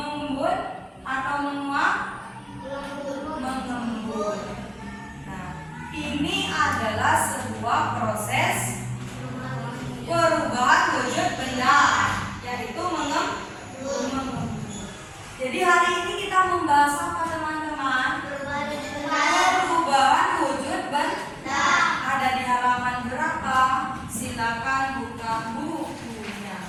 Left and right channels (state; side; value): identical; both; correlation 1.00